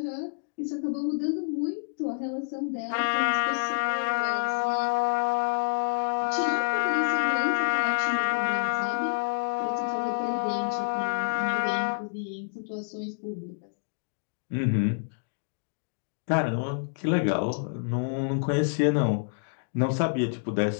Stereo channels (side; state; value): right; silent; digital silence